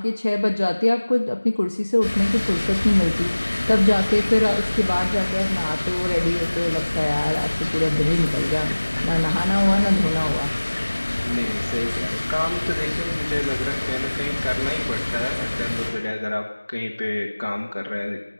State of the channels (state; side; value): inverted; both; correlation -1.00